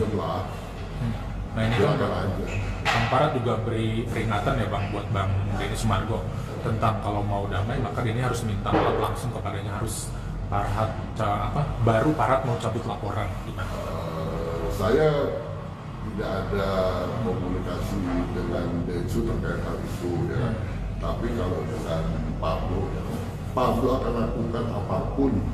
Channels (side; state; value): both; identical; correlation 1.00